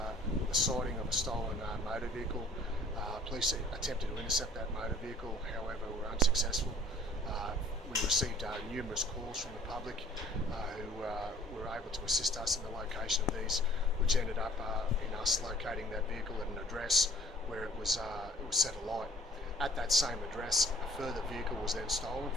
sighting of a stolen motor vehicle. Police attempted to intercept that motor vehicle, however, were unsuccessful. We received numerous calls from the public who were able to assist us in the location of these, which ended up in us locating that vehicle at an address where it was set alight. At that same address, a further vehicle was then stolen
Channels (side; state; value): both; normal; correlation 0.54